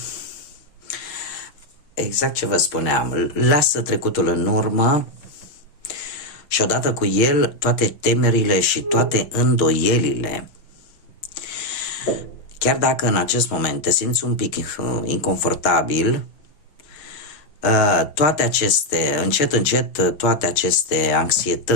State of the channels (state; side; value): late; right; 6.4 ms